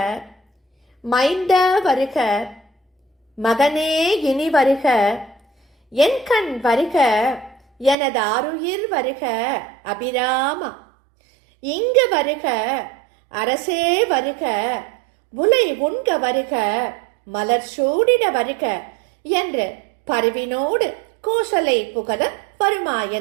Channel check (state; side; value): drops out; left; at 8.0 s